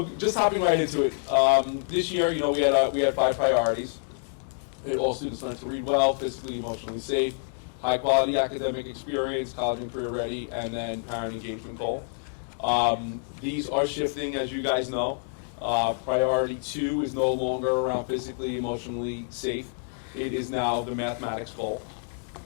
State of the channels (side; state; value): right; silent; digital silence